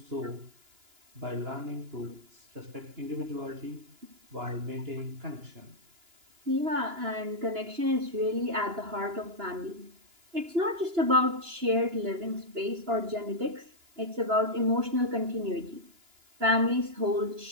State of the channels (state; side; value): late; left; 2.9 ms